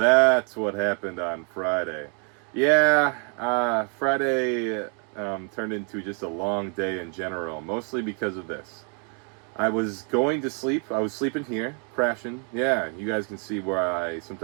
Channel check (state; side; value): quieter; left; 39.9 dB